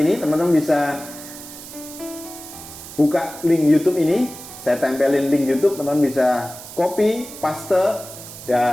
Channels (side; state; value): right; noise; hiss, 14 dB below the sound